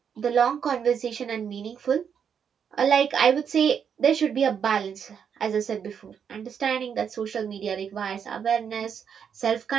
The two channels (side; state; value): left; quieter; 7.5 dB